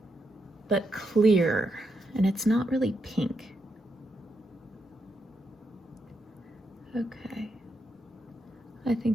but clear, and it's not really pink. Okay. I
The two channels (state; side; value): normal; both; correlation 0.82